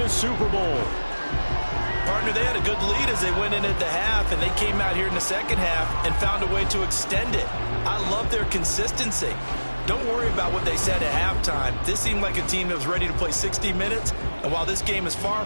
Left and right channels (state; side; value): inverted; both; correlation -1.00